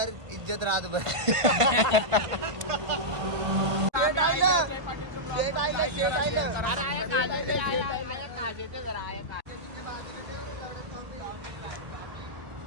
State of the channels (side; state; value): left; late; 1.5 ms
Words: इज्जत रात भर.